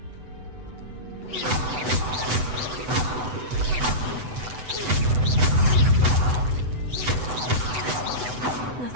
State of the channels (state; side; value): late; left; 8.0 ms